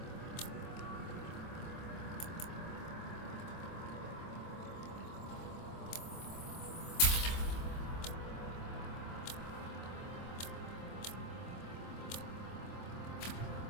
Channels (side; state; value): right; late; 25 ms